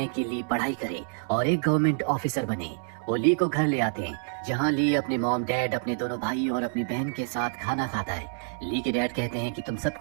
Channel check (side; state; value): left; silent; 60 dB below the other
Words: कि ली पढ़ाई करे और एक गवर्नमेंट ऑफिसर बने। वो ली को घर ले आते हैं, जहां ली अपने मॉम डैड, अपने दोनों भाई और अपनी बहन के साथ खाना खाता है। ली के डैड कहते हैं कि तुम